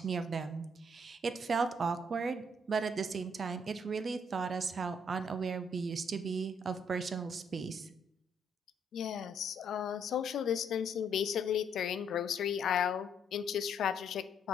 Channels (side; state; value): both; normal; correlation 0.69